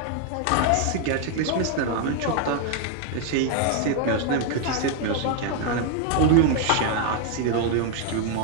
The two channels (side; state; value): both; different; correlation 0.00